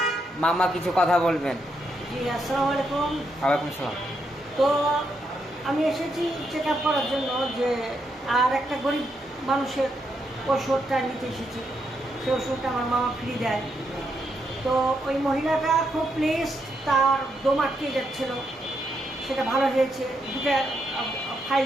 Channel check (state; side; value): normal; both; correlation 0.80